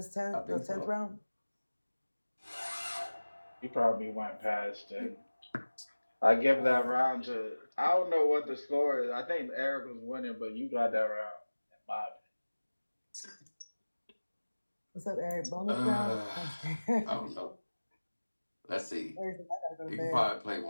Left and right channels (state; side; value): inverted; both; correlation -1.00